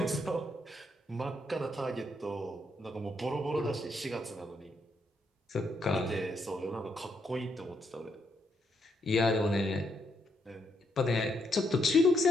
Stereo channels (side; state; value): both; normal; correlation 0.77